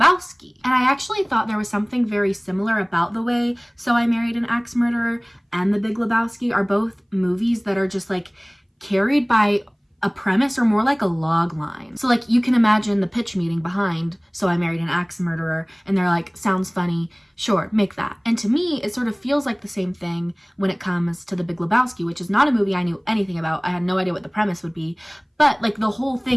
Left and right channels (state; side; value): identical; both; correlation 1.00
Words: and I actually thought there was something very similar about the way So I Married an Axe Murderer and The Big Lebowski are both movies that are just like carried by a premise or more like a log line. So like you can imagine the pitch meeting behind So I Married an Axe Murderer, and they're like, sounds funny, sure, make that. And to me, it sort of feels like the same thing when it comes to The Big Lebowski, which is not a movie I knew anything about. I had no idea what the premise would be, but like the whole